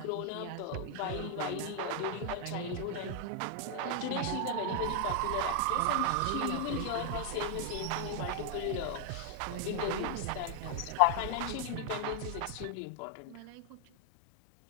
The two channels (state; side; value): different; both; correlation 0.00